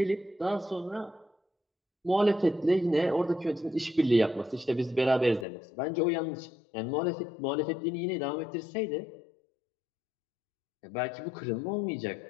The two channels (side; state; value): right; drops out; at 5.5 s